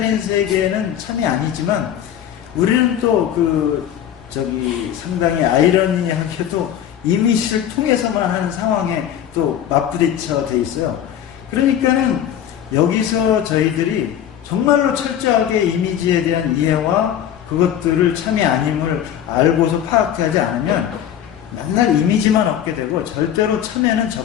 세계는 참이 아니지만 우리는 또 상당히 아이러니하게도 이미지를 통해서만 하는 상황에 또 맞부딪혀 돼 있어요. 그러니까는 여기서 저희들이 정말로 철저하게 이미지에 대한 이해와 그것들을 참이 아님을 알고서 파악하지 않으면 맨날 이미지만 얻게 되고 절대로 참에는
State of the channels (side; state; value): right; quieter; 10.1 dB